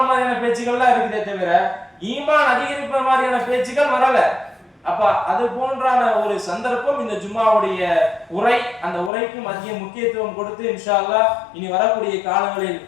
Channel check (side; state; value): right; drops out; at 9.1 s